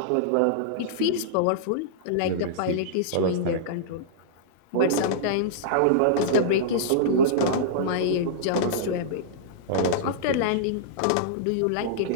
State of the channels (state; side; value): different; both; correlation -0.02